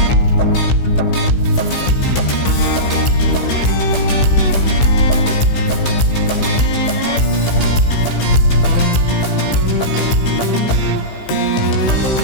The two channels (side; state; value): right; late; 15 ms